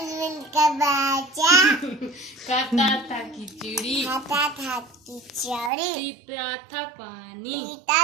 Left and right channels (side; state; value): left; drops out; at 5.7 s